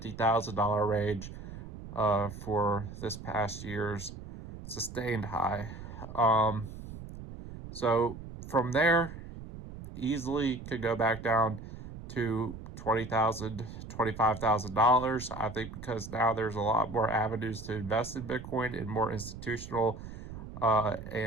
range for this past year's sustained high. So from there, easily could go back down to $20,000, $25,000. I think because now there's a lot more avenues to invest in Bitcoin and more institutional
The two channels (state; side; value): noise; right; rumble, 12 dB below the sound